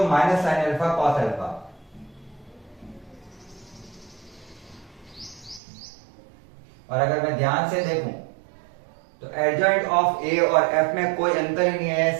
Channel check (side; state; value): left; drops out; at 5.6 s